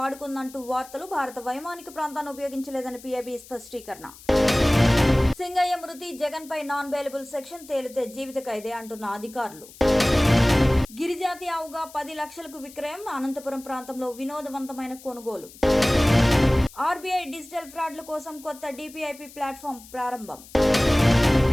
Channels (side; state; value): left; noise; hiss, 20 dB below the sound